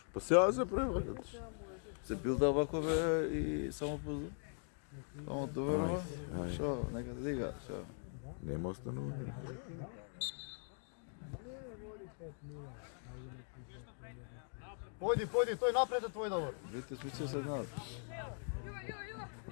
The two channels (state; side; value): silent; right; 50 dB below the other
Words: Па сега се превракат. Се билда вако бе и само позна. Само доверува. Ај. Шо, нека да дига, шо. Нема останување. Појди, појди, тој напред е твој Давор. Видите, смисла се знаат.